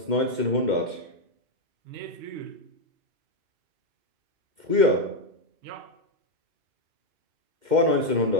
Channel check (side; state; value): left; late; 2.1 ms